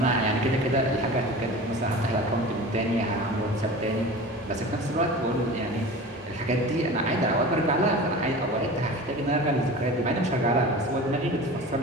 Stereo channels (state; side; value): normal; both; correlation 0.35